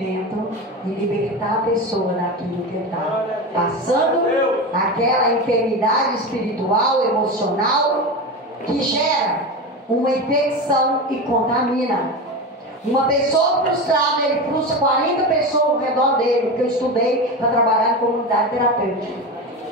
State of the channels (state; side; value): normal; both; correlation 0.23